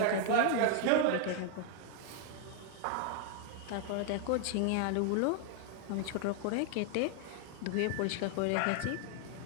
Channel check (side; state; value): both; different; correlation 0.00